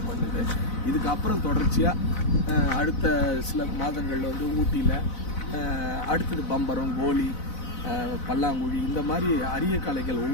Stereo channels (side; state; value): right; late; 4.0 ms